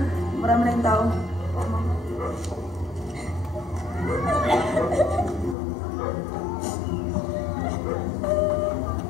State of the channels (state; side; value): drops out; right; at 5.6 s